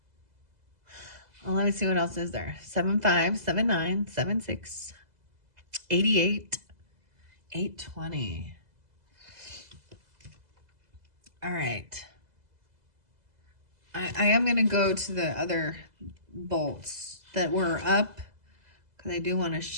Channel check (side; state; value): left; late; 2.0 ms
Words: let me see what else is there. 7-5, 7-9, 7-6, 88, 8-20. All right. I am going to go to the other bolts that were up because I do want to